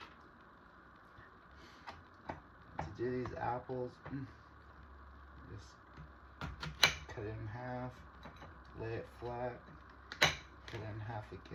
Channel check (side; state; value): both; identical; correlation 1.00